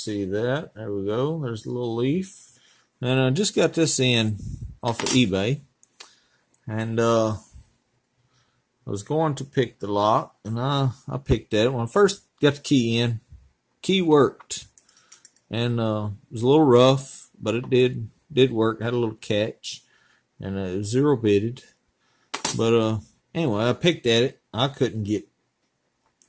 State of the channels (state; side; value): identical; both; correlation 1.00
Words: that. There we go. There's a little leaf, and I just got this in off of eBay, and I was going to pick the lock, and I picked that. When I first got the key in, key worked, and it was a little rough, but it did work. Had a little catch, and it was zero bitted, but anyway, I picked at it. I couldn't get,